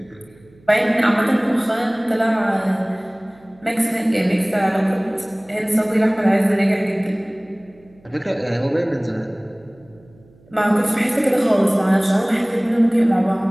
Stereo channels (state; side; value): noise; right; hum, 29 dB below the sound